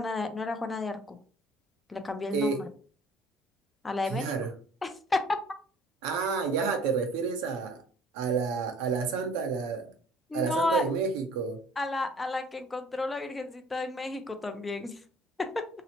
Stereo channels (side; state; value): both; normal; correlation 0.52